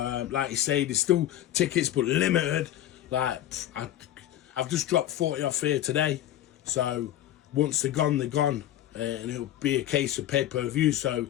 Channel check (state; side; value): quieter; right; 12.6 dB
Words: Like you say, there's still tickets, but limited. Like, I've just dropped 40 off here today. So once they're gone, they're gone. And it'll be a case of pay-per-view. So